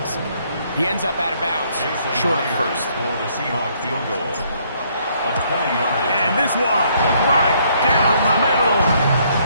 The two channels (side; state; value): both; inverted; correlation -0.68